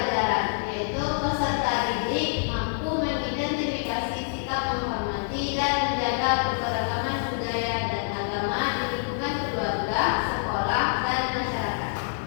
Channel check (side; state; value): right; silent; digital silence